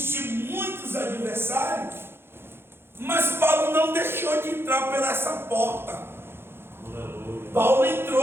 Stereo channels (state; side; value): late; left; 0.11 ms